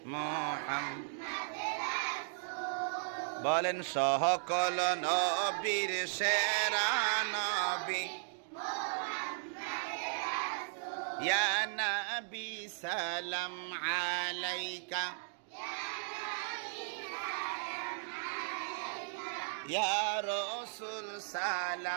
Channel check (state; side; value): silent; left; digital silence